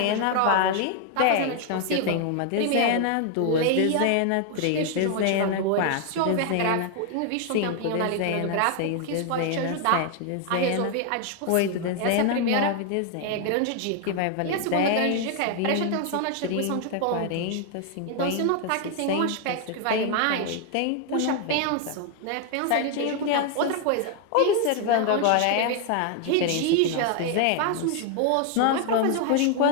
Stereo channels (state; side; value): different; both; correlation 0.00